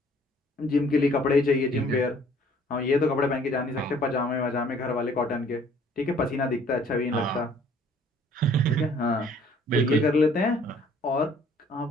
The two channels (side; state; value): both; normal; correlation 0.58